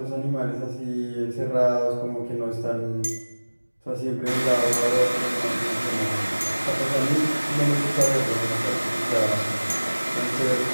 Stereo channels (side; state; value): both; inverted; correlation -1.00